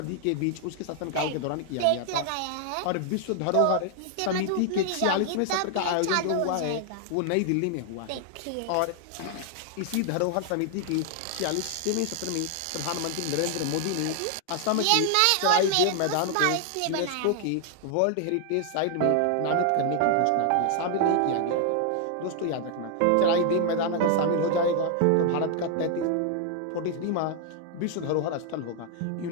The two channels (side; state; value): both; different; correlation 0.00